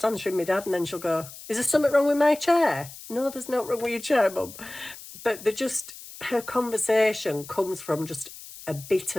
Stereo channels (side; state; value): left; noise; hiss, 15 dB below the sound